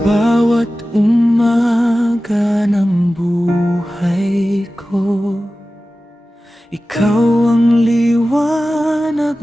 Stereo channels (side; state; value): both; normal; correlation 0.95